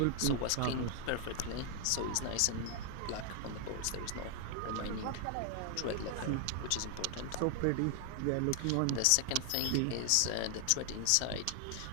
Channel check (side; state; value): both; different; correlation 0.00